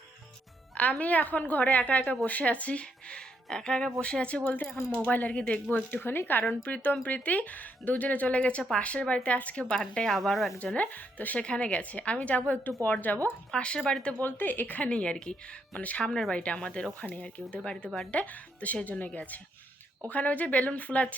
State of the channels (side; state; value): both; normal; correlation 0.76